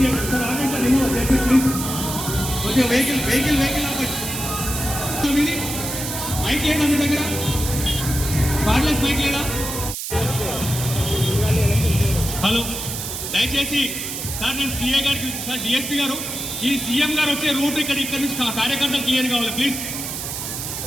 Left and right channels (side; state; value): right; noise; hiss, 5 dB below the sound